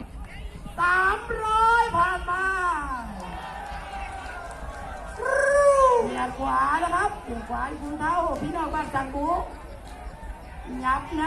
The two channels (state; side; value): identical; both; correlation 1.00